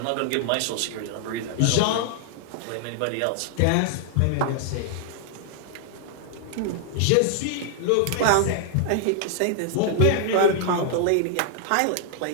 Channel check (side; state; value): both; different; correlation -0.01